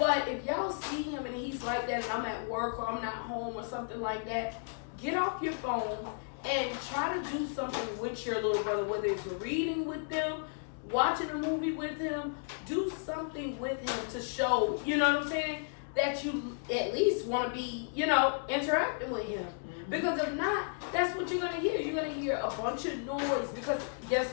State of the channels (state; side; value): silent; right; digital silence